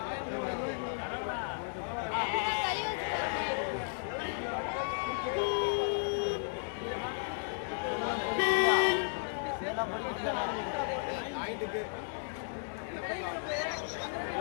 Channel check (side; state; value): right; silent; 55 dB below the other